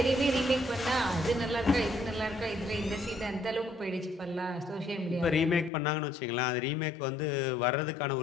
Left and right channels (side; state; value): right; drops out; at 5.7 s